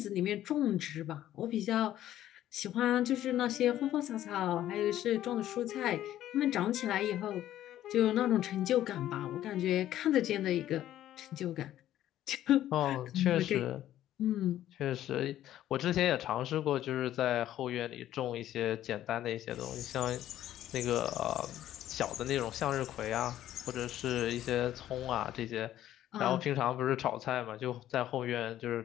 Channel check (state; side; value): quieter; right; 12.6 dB